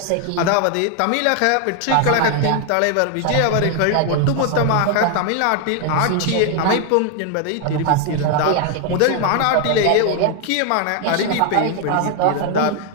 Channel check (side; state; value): both; different; correlation 0.00